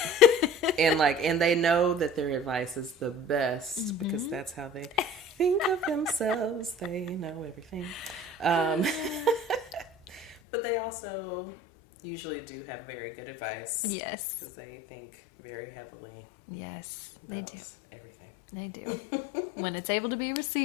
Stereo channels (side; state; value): right; drops out; at 10.4 s